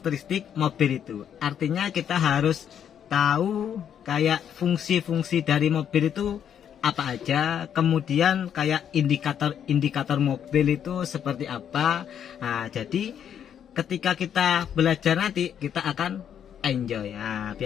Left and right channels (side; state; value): right; quieter; 8.9 dB